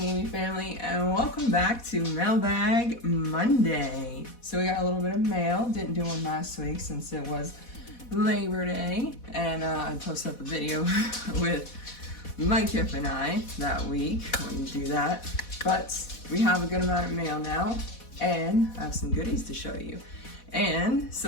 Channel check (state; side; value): late; right; 4.1 ms